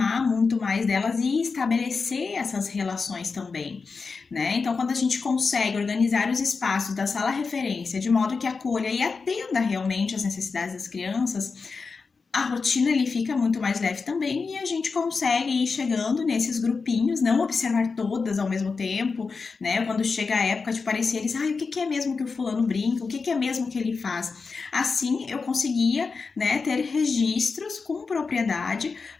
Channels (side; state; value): right; quieter; 4.7 dB